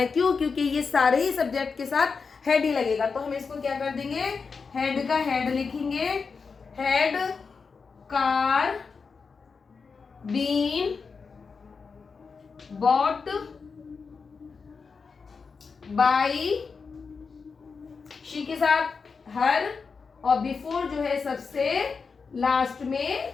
है। क्यों? क्योंकि ये सारे ही सब्जेक्ट के साथ हैड ही लगेगा। तो हम इसको क्या कर देंगे, हैड का हैड लिखेंगे, had car been bought by she के साथ हर, और बिफोर जो है सबसे लास्ट में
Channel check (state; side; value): quieter; right; 5.1 dB